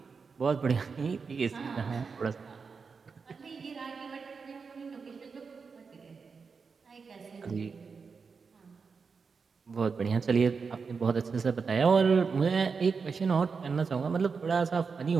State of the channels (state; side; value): quieter; left; 5.2 dB